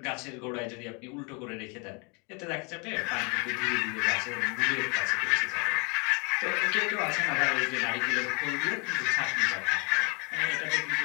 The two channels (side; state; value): right; quieter; 32.5 dB